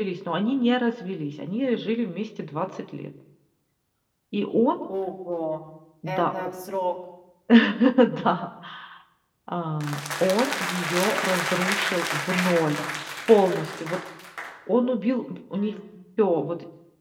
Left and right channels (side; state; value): both; identical; correlation 1.00